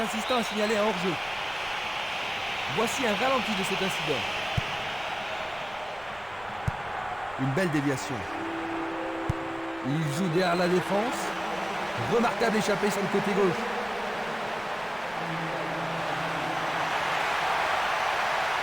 assistant a signalé un hors-jeu. Voici un ralenti de cet incident. Une belle déviation. Il joue derrière la défense. Remarquable échappée sur le côté gauche.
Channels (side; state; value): right; noise; rumble, 23 dB below the sound